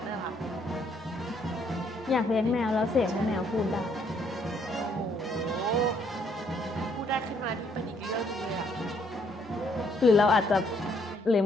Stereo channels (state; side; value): normal; both; correlation 0.68